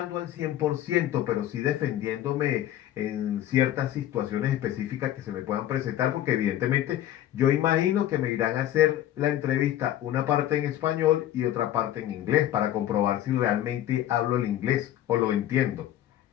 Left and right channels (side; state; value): right; quieter; 12.4 dB